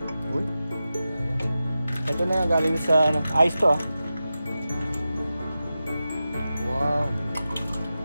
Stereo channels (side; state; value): both; inverted; correlation -0.93